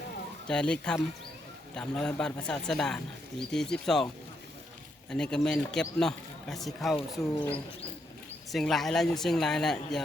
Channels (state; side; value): normal; both; correlation 0.78